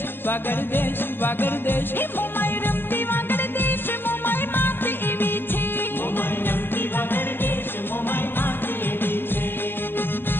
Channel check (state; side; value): late; right; 0.098 ms